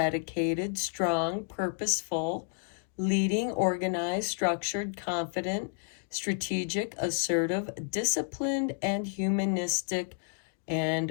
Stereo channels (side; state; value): right; silent; digital silence